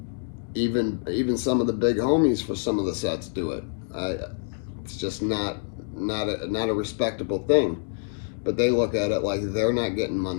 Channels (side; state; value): right; silent; 61 dB below the other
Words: Even some of the big homies for some of the sets do it. It's just not a respectable thing. But they look at it like they're not getting